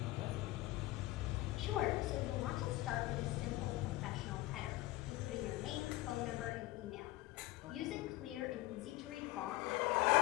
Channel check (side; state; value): right; quieter; 18.2 dB